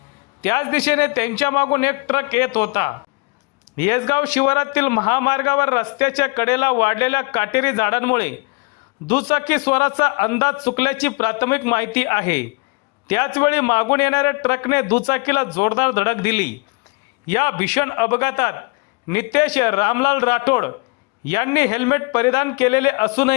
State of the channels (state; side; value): quieter; right; 30.1 dB